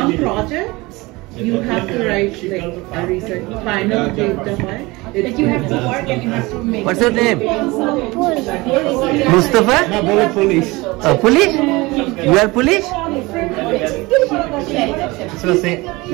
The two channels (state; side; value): quieter; left; 22.6 dB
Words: projects you have to write like a research final data. Like you have to work and you have to make. What's your name? Mustafa? Police. Police? You are police? So say,